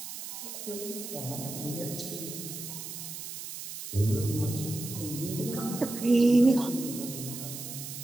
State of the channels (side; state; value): right; noise; hiss, 9 dB below the sound